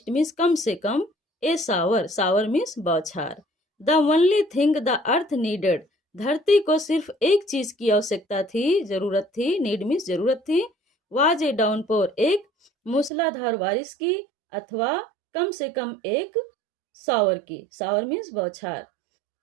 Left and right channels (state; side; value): drops out; left; at 13.1 s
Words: मीन्स कम से कम। ए सावर, सावर मीन्स बौछार। The only thing the earth needed, धरती को सिर्फ एक चीज की आवश्यकता थी, जरूरत थी, नीड मीन्स जरूरत थी। वाज ए डाउनपोर, एक मूसलाधार बारिश की, अथवा कम से कम एक सावर की। सावर मीन्स बौछार।